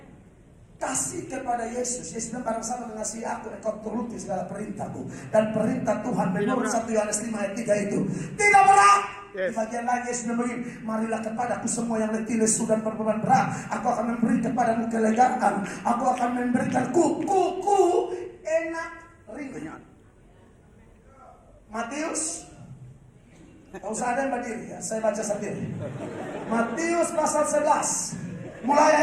Kasih kepada Yesus. Yesus bilang, barang siapa mengasihi aku, engkau turuti segala perintahku. Dan perintah Tuhan menurut 1 Yohanes 5 ayat 3 itu tidak berat. Yes. Di bagian lain Yesus bilang begini, marilah kepadaku semua yang letih, lesu dan berbeban berat, aku akan memberi kepadamu kelegaan. Aku akan memberikan kuku enak ringan. Matius, tak usah ada yang berdiri ya, saya baca sendiri. Matius pasal 11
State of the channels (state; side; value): identical; both; correlation 1.00